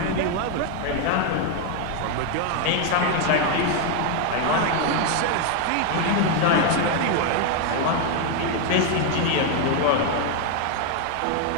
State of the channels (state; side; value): different; both; correlation 0.01